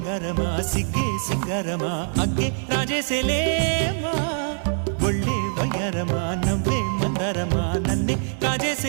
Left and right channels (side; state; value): left; silent; 63 dB below the other